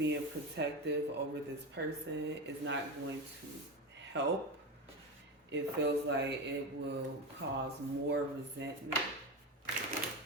protective over this person is not going to help. It feels like it will cause more resentment.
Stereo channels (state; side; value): normal; both; correlation 0.18